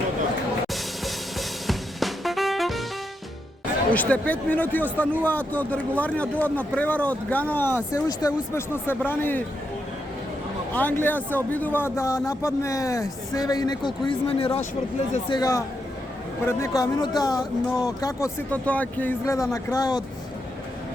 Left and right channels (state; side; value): normal; both; correlation 0.83